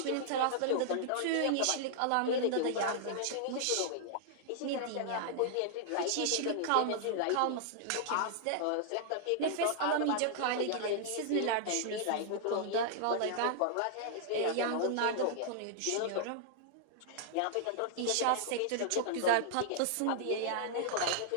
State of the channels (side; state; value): both; different; correlation -0.01